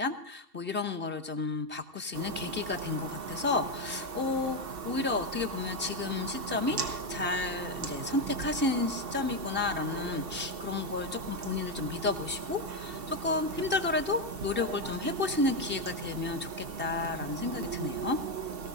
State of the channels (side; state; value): left; late; 2.7 ms